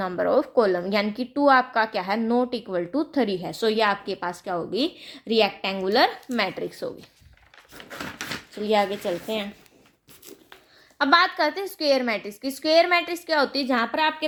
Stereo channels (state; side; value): identical; both; correlation 1.00